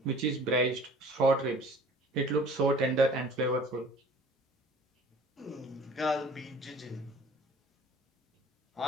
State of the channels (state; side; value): normal; both; correlation 0.48